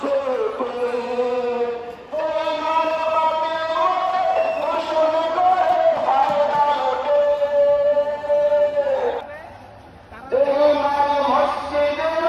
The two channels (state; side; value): identical; both; correlation 1.00